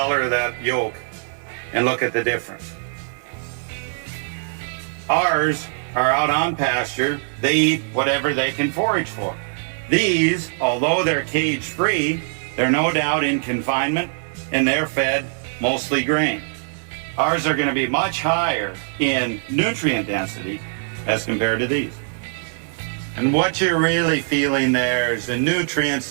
of that yolk and look at the difference. Ours are out on pasture. They eat whatever they can forage for. These, although they're cage-free, they're no doubt in confinement and they're fed mostly grain. Ours are going to be much higher in nutrient density as compared to these. And what you're really feeling there is the nutrients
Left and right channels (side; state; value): left; silent; 64 dB below the other